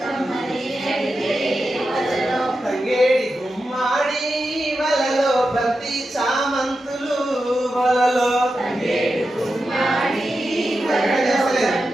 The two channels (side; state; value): both; normal; correlation 0.90